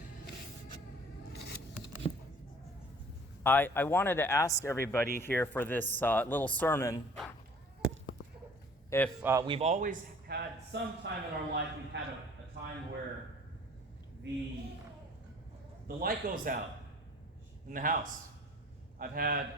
I wanted to ask everybody here for this little sermon if we've always had some time in our life, we've had a time where the light goes out in the house. I've had,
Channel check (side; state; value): both; normal; correlation 0.51